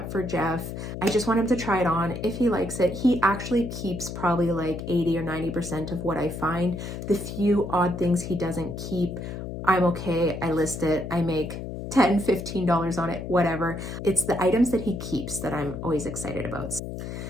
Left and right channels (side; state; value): left; noise; hum, 7 dB below the sound